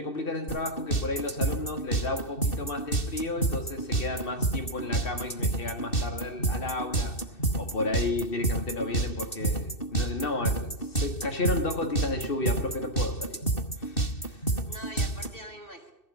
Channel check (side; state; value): right; late; 2.6 ms